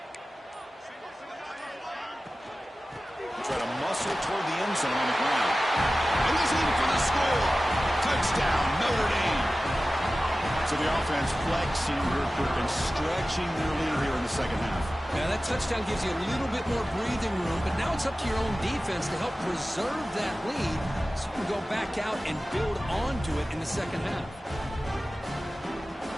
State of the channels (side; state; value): both; normal; correlation 0.96